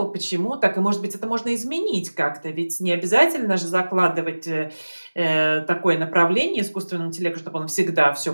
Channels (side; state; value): both; inverted; correlation -1.00